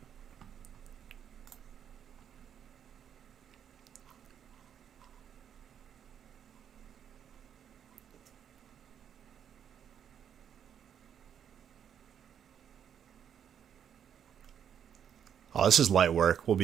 Oh, this is light work. We'll be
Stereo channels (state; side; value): quieter; left; 8.6 dB